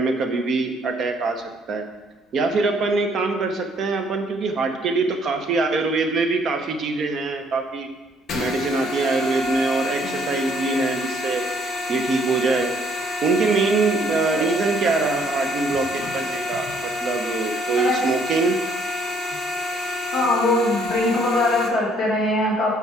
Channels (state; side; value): normal; both; correlation 0.65